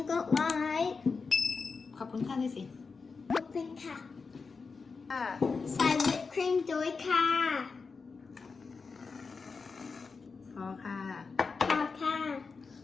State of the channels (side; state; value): right; quieter; 4.7 dB